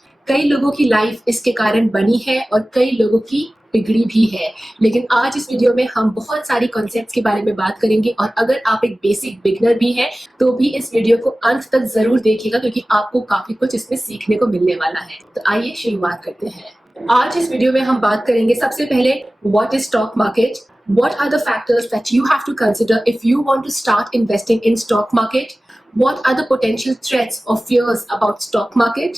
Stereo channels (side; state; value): both; normal; correlation 0.97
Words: कई लोगों की लाइफ इसके कारण बनी है और कई लोगों की बिगड़ी भी है। लेकिन आज इस वीडियो में हम बहुत सारी कॉन्सेप्ट्स के बारे में बात करेंगे और अगर आप एक बेसिक बिगनर भी हैं तो भी इस वीडियो को अंत तक जरूर देखिएगा क्योंकि आपको काफी कुछ इसमें सीखने को मिलने वाला है। तो आइए शुरुआत करते हैं। आज इस वीडियो में हम बात करेंगे सबसे पहले what is stock market, what are the factors that you have to consider if you want to start investing in stock market, what are the potential threats or fears about stock market,